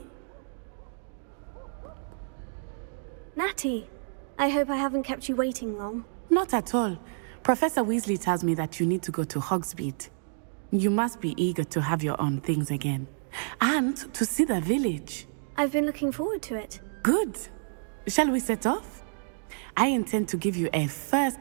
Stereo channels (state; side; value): silent; left; digital silence